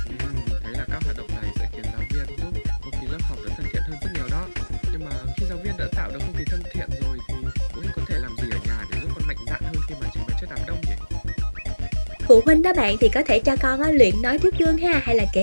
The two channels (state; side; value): inverted; both; correlation -1.00